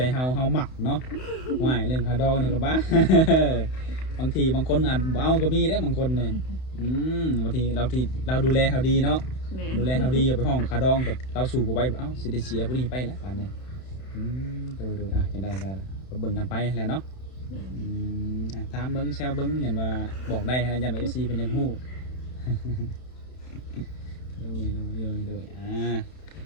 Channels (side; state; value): right; late; 31 ms